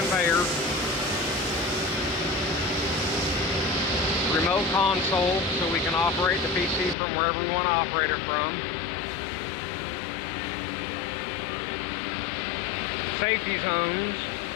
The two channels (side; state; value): right; drops out; at 7.0 s